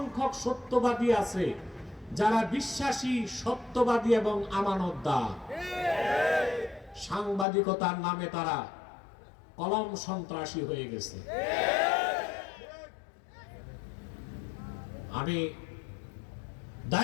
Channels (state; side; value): drops out; right; at 7.5 s